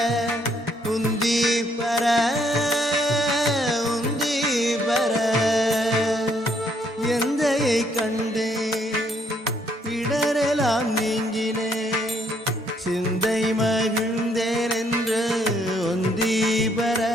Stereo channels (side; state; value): both; normal; correlation 0.69